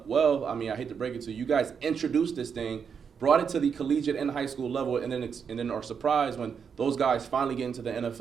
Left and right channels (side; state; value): left; quieter; 6.7 dB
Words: Well, I mean, I hate to break it to you. You guys introduced this thing, brought it to the collegiate and high school level, and then are surprised when those guys finally get into the